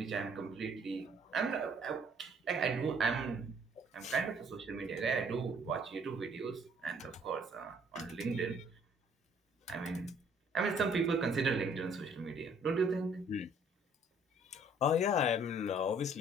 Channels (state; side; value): normal; both; correlation 0.60